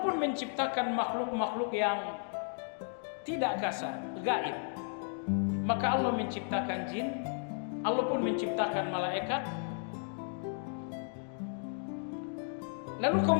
pun menciptakan makhluk-makhluk yang tidak kasar, gaib. Maka Allah menciptakan jin, Allah pun menciptakan malaikat. Lalu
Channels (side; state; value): right; silent; 55 dB below the other